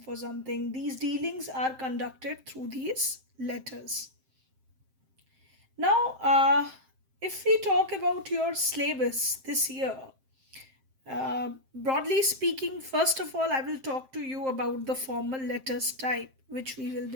something, these dealings are conducted through these letters. Now, if we talk about your syllabus this year, broadly speaking, first of all, I will talk to you about the formal letters type, which we will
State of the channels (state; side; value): late; left; 7.6 ms